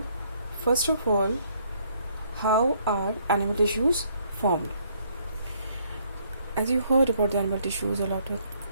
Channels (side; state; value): both; inverted; correlation -0.67